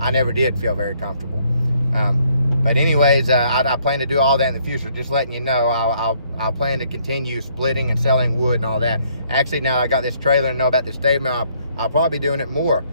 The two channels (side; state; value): both; inverted; correlation -0.67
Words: never did feel very comfortable. But anyways, I plan to do all that in the future. Just letting you know, I'll plan to continue splitting and selling wood and all that. Actually, now I got this trailer and know about this Stave Mill, I'll probably be doing it more